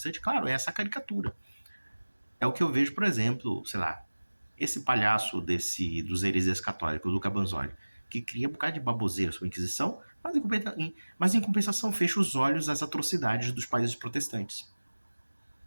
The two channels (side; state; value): both; inverted; correlation -1.00